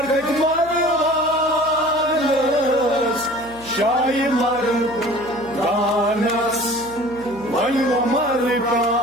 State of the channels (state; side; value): noise; right; hum, 20 dB below the sound